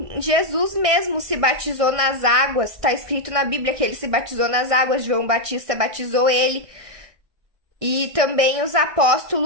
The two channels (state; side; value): late; left; 1.6 ms